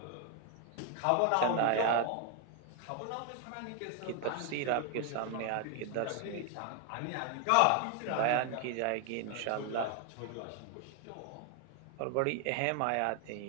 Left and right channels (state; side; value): different; both; correlation 0.01